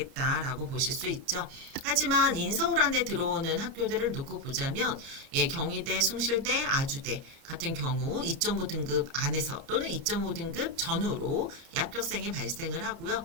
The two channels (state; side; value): late; left; 30 ms